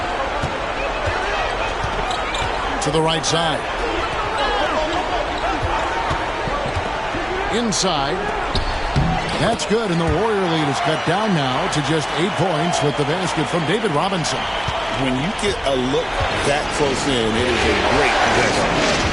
To the right side. Inside. That's good, and the Warrior lead is cut down now to just 8 points with the basket from David Robinson. When you get a look that close in, it is a great possession.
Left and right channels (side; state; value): both; identical; correlation 1.00